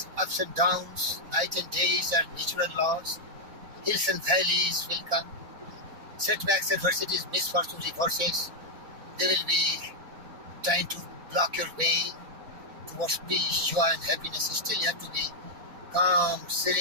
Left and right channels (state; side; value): late; left; 4.0 ms